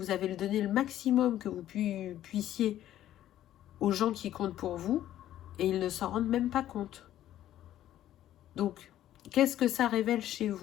avez donné le maximum que vous puissiez aux gens qui comptent pour vous et ils ne s'en rendent même pas compte. Donc, qu'est-ce que ça révèle chez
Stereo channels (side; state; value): right; quieter; 12.6 dB